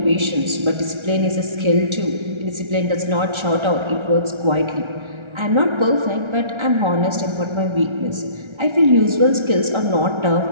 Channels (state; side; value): late; left; 1.3 ms